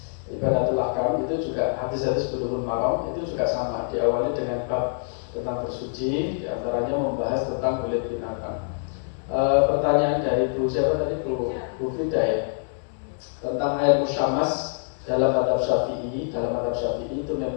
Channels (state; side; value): silent; right; digital silence